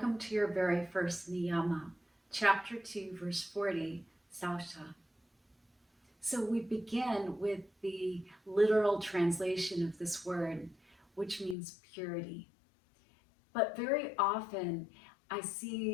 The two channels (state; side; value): drops out; right; at 11.6 s